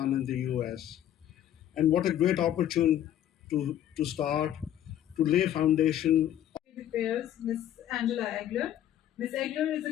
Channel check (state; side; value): quieter; right; 11.4 dB